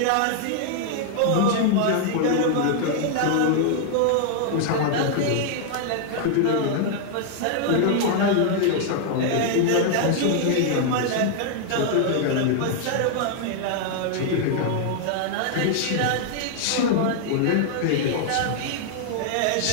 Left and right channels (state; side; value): different; both; correlation 0.00